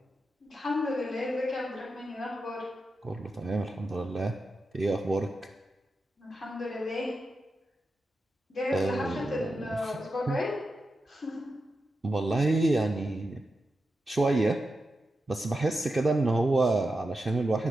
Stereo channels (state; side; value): normal; both; correlation 0.89